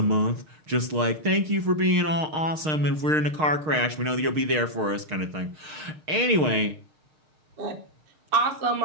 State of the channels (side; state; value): left; late; 6.5 ms